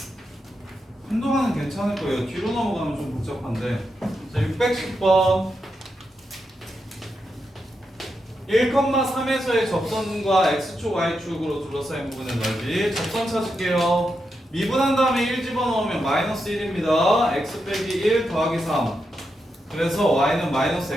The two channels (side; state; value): both; normal; correlation 0.85